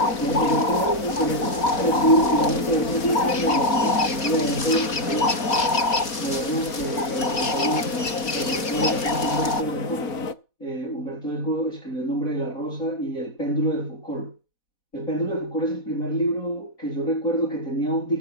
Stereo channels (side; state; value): right; late; 4.1 ms